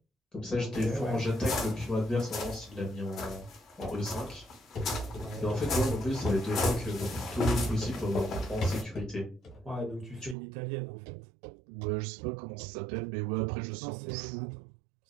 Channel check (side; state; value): left; drops out; at 10.4 s